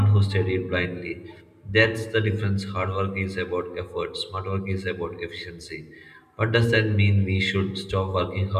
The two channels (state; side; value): identical; both; correlation 1.00